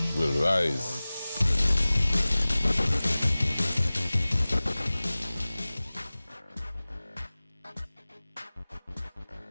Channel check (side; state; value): both; inverted; correlation -0.99